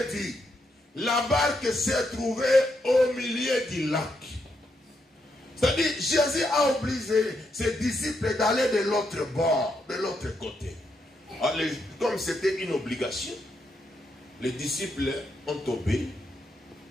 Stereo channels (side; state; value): both; normal; correlation 0.80